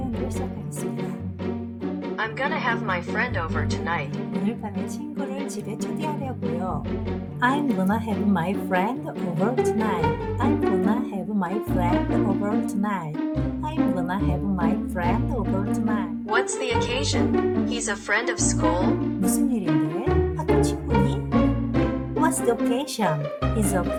시작하겠습니다. I'm gonna have my friend over tonight. 오늘 밤에 친구를 집에 초대하려고요. I'm gonna have my friend over tonight. I'm gonna have my friend over tonight. I'm gonna have my friend over tonight. What's the occasion? He's a friend of school? 무슨 일인데? 학교 친구니? What's the occasion? Is a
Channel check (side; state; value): both; identical; correlation 1.00